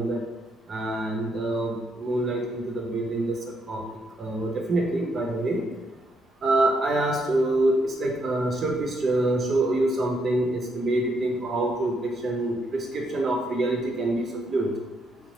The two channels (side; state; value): both; normal; correlation 0.75